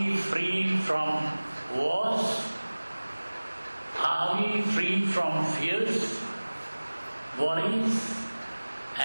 free from wars? Are we free from fears, worries,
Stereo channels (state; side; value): inverted; both; correlation -1.00